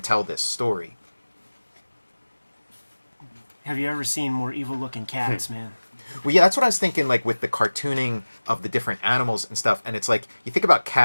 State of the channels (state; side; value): inverted; both; correlation -1.00